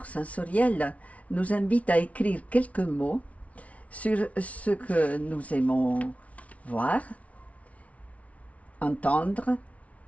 sensoriel nous invite à écrire quelques mots sur ce que nous aimons voir, entendre,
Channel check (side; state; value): right; late; 0.066 ms